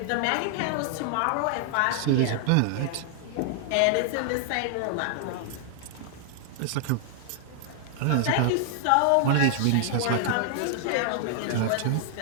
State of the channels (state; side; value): different; both; correlation 0.00